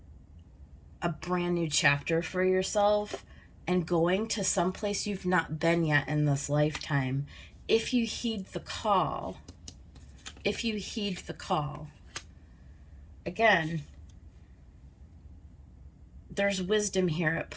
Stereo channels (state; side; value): identical; both; correlation 1.00